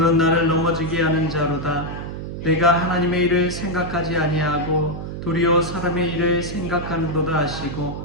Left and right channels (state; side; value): noise; right; hum, 7 dB below the sound